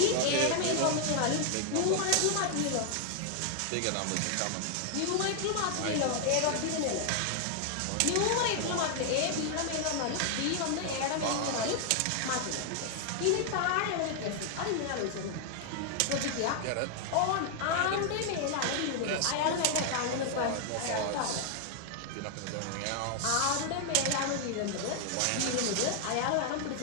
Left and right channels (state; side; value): different; both; correlation 0.00